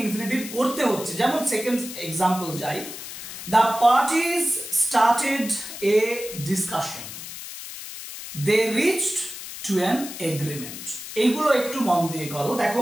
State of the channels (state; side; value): noise; left; hiss, 10 dB below the sound